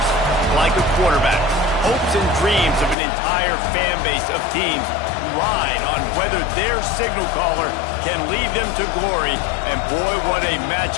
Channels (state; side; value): drops out; right; at 3.0 s